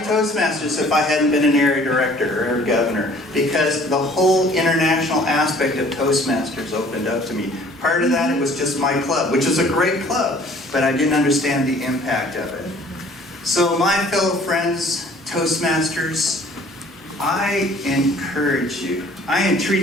Toastmasters if I hadn't been an area director or a governor, because the whole international aspect of Toastmasters opened up to me. Part of that, it was just my club, which is a great club, but I didn't understand the impact of it. So my fellow friends, Toastmasters, I encourage you, I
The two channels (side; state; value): both; normal; correlation 0.54